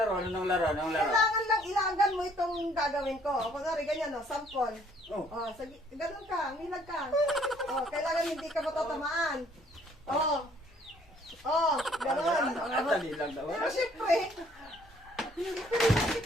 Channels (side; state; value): both; normal; correlation 0.61